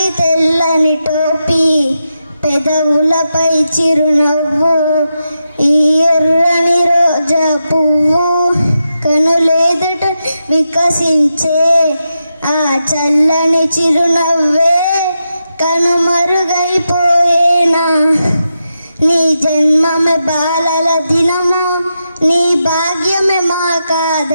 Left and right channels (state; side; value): inverted; both; correlation -0.87